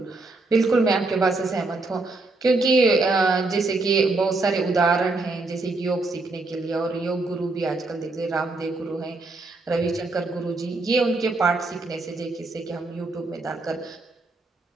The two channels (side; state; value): left; quieter; 3.3 dB